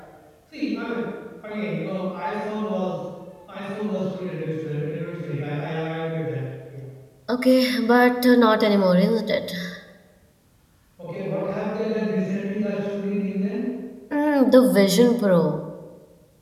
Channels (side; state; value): both; identical; correlation 1.00